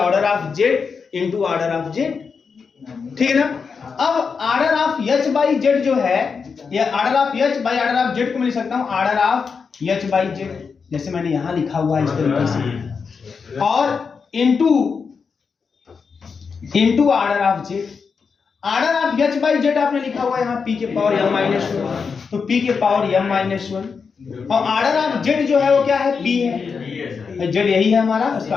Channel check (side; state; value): right; quieter; 5.5 dB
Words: of Z into order of Z, ठीक है ना। अब order of H by Z जो है, ये order of H by order of Z को मैं लिख सकता हूं order of H by Z, जैसे मैंने यहां लिखा हुआ है इस तरीके से, और into order of z. Order of H by Z आपने लिखा हुआ है यहाँ पी के पावर m माइनस 1, तो पी के पावर m माइनस 1, और ऑर्डर ऑफ जेड जो है वो क्या है, p है, जेड यही है हमारा, उसका